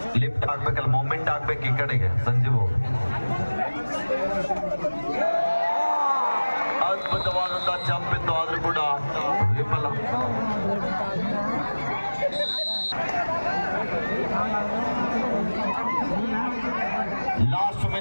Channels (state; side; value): inverted; both; correlation -1.00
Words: ಲಿಫ್ಟ್ ಆಗ್ಬೇಕಲ್ಲ, ಮೂಮೆಂಟ್ ಆಗ್ಬೇಕು ಈ ಕಡೆಗೆ. ಸಂಜೀವ್ ಅದ್ಭುತವಾದಂತಹ ಜಂಪ್ ಇತ್ತು, ಆದ್ರೂ ಕೂಡ ವಿಫಲ. ಲಾಸ್ಟ್